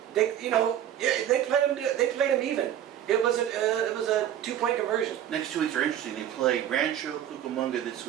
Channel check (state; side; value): quieter; left; 10.8 dB